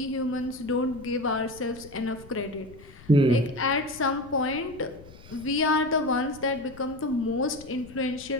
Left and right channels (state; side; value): noise; left; rumble, 20 dB below the sound